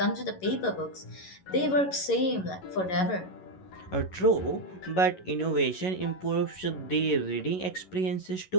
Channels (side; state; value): right; late; 11 ms